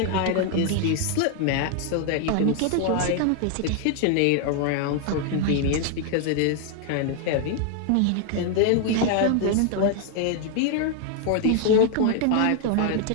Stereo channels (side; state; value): both; different; correlation 0.00